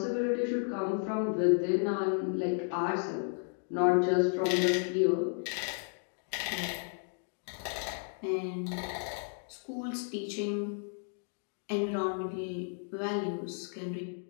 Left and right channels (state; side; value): silent; right; 56 dB below the other